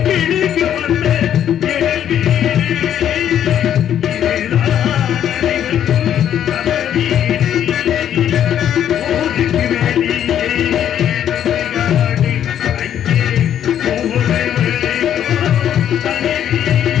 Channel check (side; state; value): right; quieter; 10.1 dB